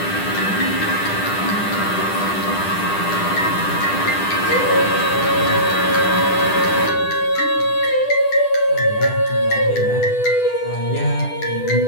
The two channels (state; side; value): late; right; 10 ms